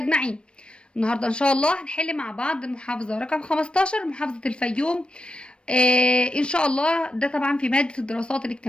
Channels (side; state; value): right; late; 0.057 ms